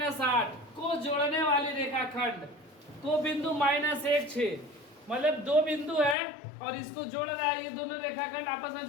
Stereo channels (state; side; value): drops out; right; at 6.2 s